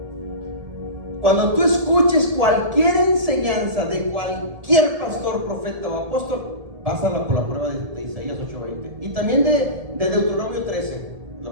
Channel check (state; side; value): late; left; 1.7 ms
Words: Cuando tú escuches cualquier enseñanza de cualquier pastor, profeta o apóstol, pásala por la prueba de Isaías 8:20 y también de Deuteronomio 13.